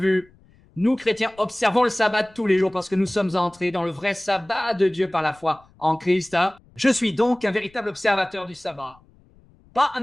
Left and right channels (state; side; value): noise; left; rumble, 29 dB below the sound